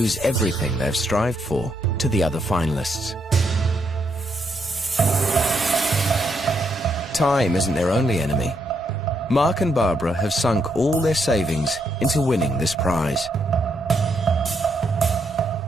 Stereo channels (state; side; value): normal; both; correlation 0.77